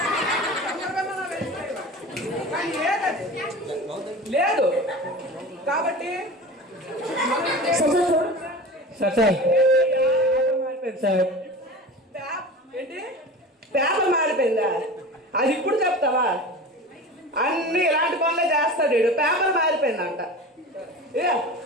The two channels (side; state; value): both; normal; correlation 0.34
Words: లేదు కాబట్టి ఏంటి పేపర్ మారిపోయిందా? అది ఇప్పుడు చెప్తావా? అన్ని ఇలాంటి పనులే చేస్తాడు వీడు. పేపర్ మారిపోయిందంట.